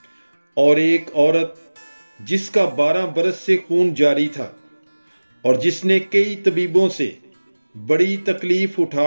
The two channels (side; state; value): both; inverted; correlation -1.00